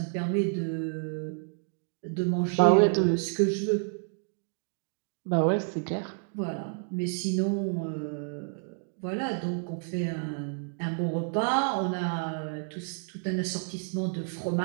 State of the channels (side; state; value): left; silent; 58 dB below the other